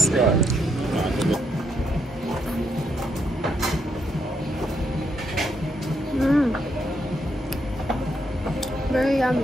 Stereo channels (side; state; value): both; normal; correlation 0.77